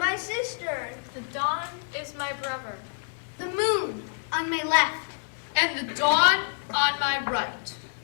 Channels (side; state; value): right; silent; 60 dB below the other